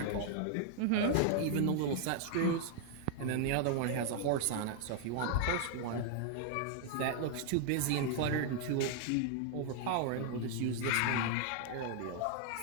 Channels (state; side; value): different; both; correlation 0.00